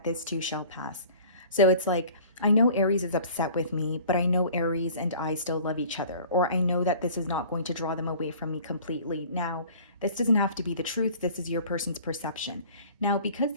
this too shall pass. So it's like, I know Aries is upset with me, but I know Aries and I still love each other, or I know that this is not going to draw them away from me completely. Now, this doesn't have to be the truth. This is your person's perception. Now, because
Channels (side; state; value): both; inverted; correlation -0.47